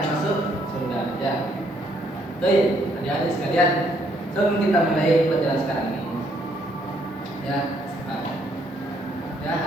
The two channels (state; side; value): normal; both; correlation 0.69